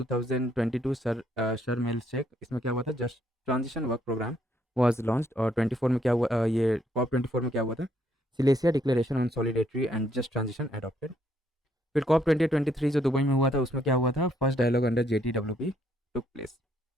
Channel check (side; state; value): both; normal; correlation 0.71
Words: Sharm el Sheikh, इसमें क्या हुआ था, just transition work programme was launched। और 24 में क्या हुआ, ये COP24 में क्या हुआ था, Silesia declaration on solidarity and just transition adopted. फिर COP2023 जो दुबई में हुआ था, उसमें क्या हुआ था, first dialogue under JTWP took place.